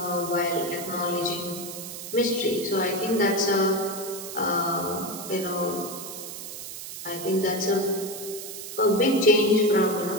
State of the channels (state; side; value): noise; right; hiss, 10 dB below the sound